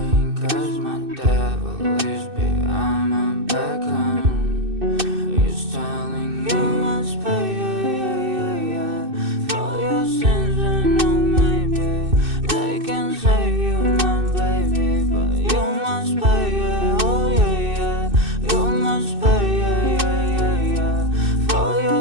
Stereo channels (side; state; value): left; late; 2.6 ms